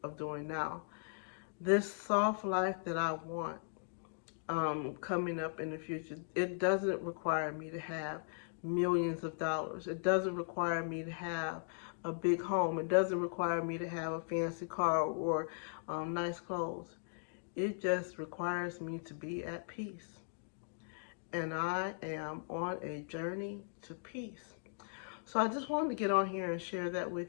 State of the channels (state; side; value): silent; right; digital silence